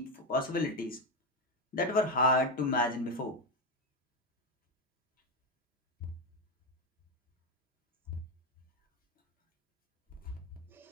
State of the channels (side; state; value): both; normal; correlation 0.11